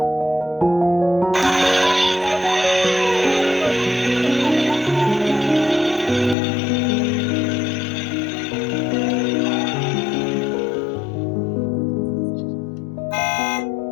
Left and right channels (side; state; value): right; drops out; at 6.4 s